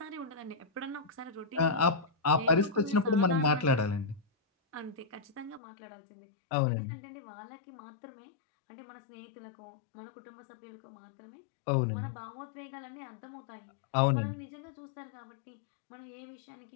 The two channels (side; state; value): right; drops out; at 5.6 s